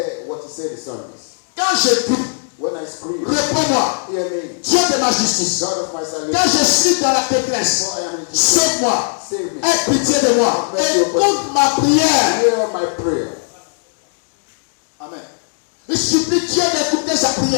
Quand je prie, when I scream, réponds-moi. hear me. Dieu de ma justice. God of my salvation. Quand je suis dans la détresse, For I am in distress. sauve-moi. Save me. Aie pitié de moi. Écoute ma prière. Hear my prayer. Amen. Il supplie Dieu d'écouter sa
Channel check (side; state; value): right; silent; digital silence